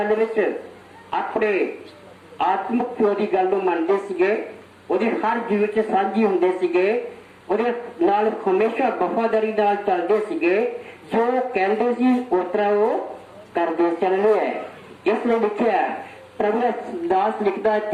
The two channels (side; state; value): both; identical; correlation 1.00